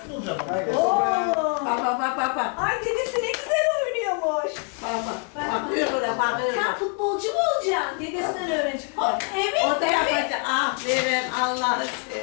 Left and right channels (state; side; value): quieter; right; 39.2 dB